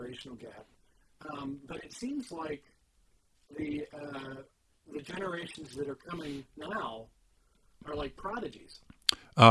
gap. But it seems like the generations that are coming now are like prodigies.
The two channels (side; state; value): both; identical; correlation 1.00